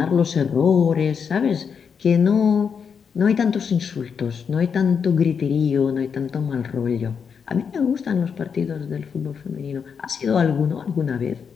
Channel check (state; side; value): quieter; right; 6.5 dB